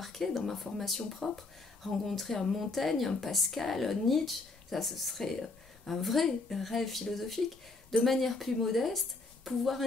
dans ma formation propre, rencontrer un Montaigne, un Pascal, un Nietzsche, ça ce serait un vrai rêve philosophique. De manière plus modeste, pouvoir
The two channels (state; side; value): quieter; right; 3.5 dB